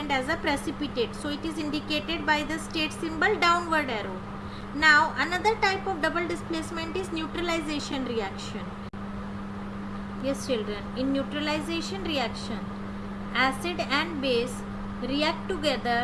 as a precipitate. So it is indicated by the state symbol downward arrow. Now another type of double displacement is neutralization reaction. Yes children, in neutralization reaction, acid and base react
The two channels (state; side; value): identical; both; correlation 1.00